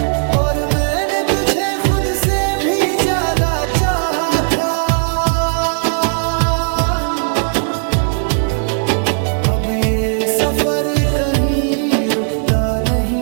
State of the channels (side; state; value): left; silent; digital silence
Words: और मैंने तुझे खुद से भी ज्यादा चाहा था। अब ये सफर कहीं रुकता